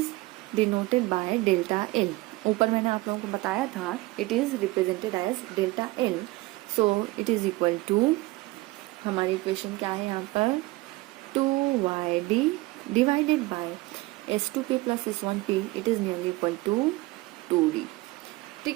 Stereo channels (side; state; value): left; quieter; 21.0 dB